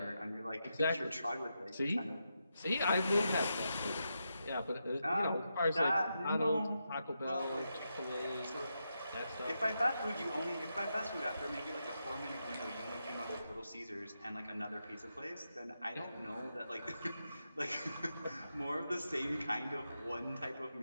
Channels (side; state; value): both; inverted; correlation -0.86